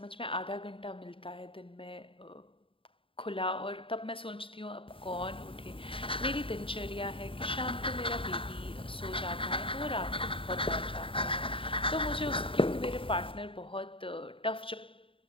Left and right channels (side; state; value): right; late; 0.26 ms